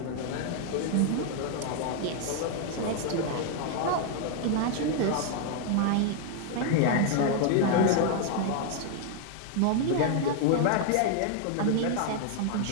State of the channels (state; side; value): different; both; correlation 0.00